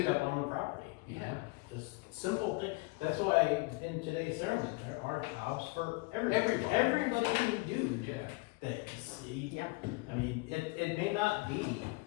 pickup on the property. Yeah. Just simple thing, that's why in today's sermon, there are jobs for everybody. Everybody. Everybody can do Yeah, things. Yep. I mean, it may not be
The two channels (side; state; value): right; quieter; 25.3 dB